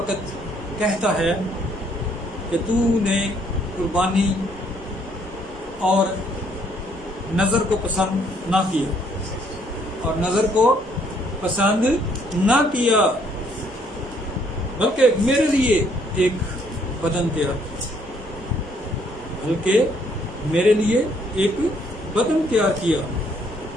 कहता है कि तूने कुर्बानी और नज़र को पसंद ना किया, बल्कि मेरे लिए एक बदन तैयार किया।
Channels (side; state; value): both; normal; correlation 0.66